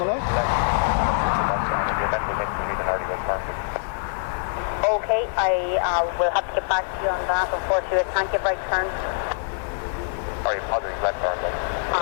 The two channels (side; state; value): right; silent; digital silence